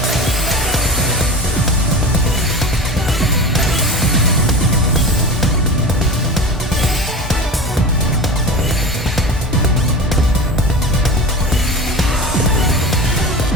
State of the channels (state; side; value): normal; both; correlation 0.31